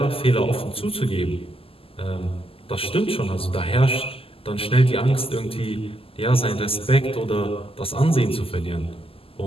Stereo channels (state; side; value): late; right; 0.27 ms